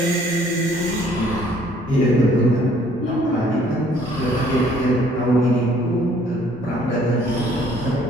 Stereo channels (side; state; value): right; noise; rumble, 23 dB below the sound